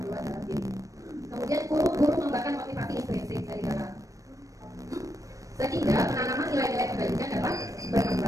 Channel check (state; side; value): late; left; 0.16 ms